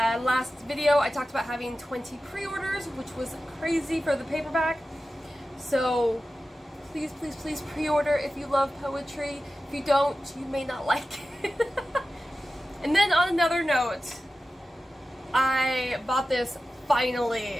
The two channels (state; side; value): normal; both; correlation 0.94